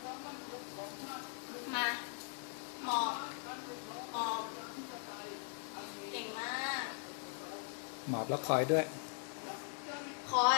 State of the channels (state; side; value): silent; right; 51 dB below the other